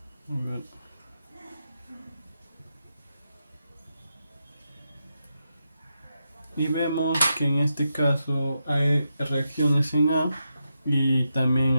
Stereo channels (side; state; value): both; inverted; correlation -0.86